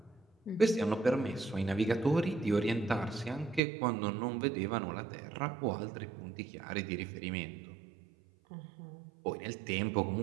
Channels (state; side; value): drops out; left; at 3.6 s